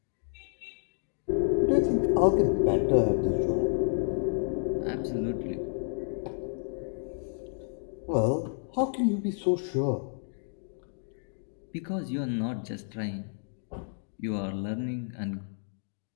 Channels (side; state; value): right; silent; digital silence